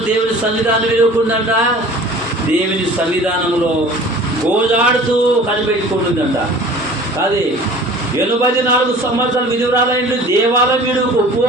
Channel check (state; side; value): normal; both; correlation 0.44